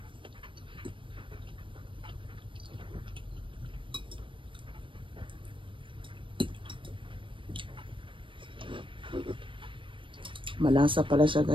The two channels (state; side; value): late; left; 0.25 ms